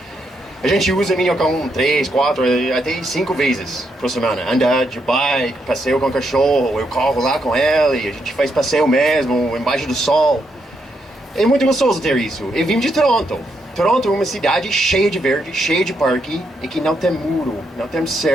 A gente usa Minhocão 3, 4, até 5 vezes por semana. Andar de bike, passeio com o cachorro, eu corro lá com ele, a gente faz passeio mesmo, embaixo do sol. É muito gostoso ter isso. Eu vim de Toronto. Toronto é uma cidade cheia de verde, cheia de parque, e que não tem muro, não tem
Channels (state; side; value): normal; both; correlation 0.79